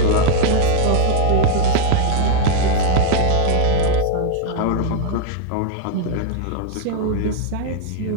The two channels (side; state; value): both; different; correlation 0.01